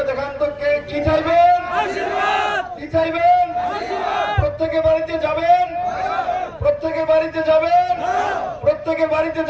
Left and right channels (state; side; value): identical; both; correlation 1.00